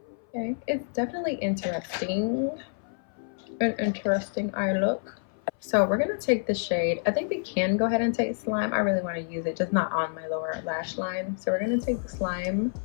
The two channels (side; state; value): right; silent; 57 dB below the other